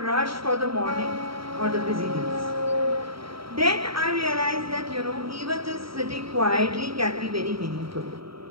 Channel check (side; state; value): left; late; 0.75 ms